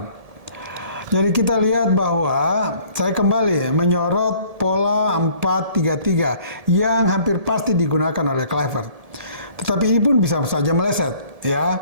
Jadi kita lihat bahwa saya kembali menyorot pola 4-3-3 yang hampir pasti digunakan oleh Kluivert. Tetapi ini pun bisa saja meleset,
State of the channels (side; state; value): left; late; 1.7 ms